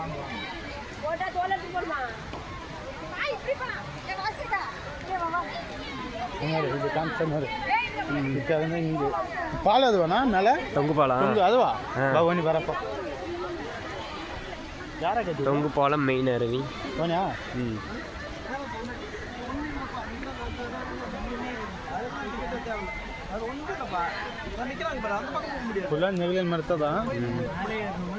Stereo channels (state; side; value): identical; both; correlation 1.00